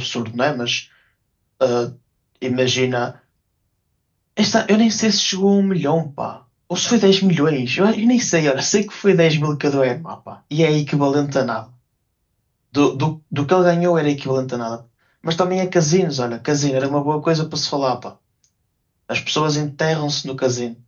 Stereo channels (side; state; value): both; identical; correlation 1.00